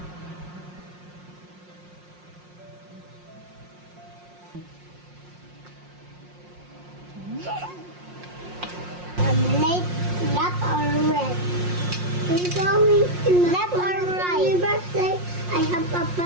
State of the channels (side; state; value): left; late; 5.6 ms